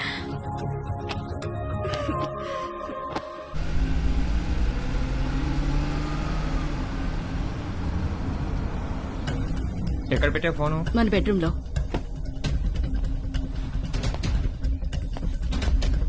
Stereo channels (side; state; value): both; identical; correlation 1.00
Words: ఎక్కడ పెట్టే ఫోను? మన బెడ్రూమ్ లో.